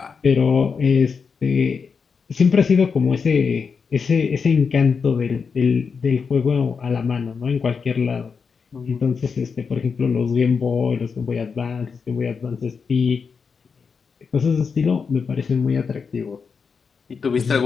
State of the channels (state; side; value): quieter; right; 5.6 dB